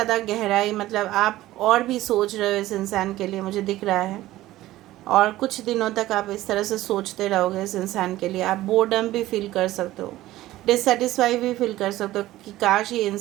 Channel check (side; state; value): left; quieter; 15.8 dB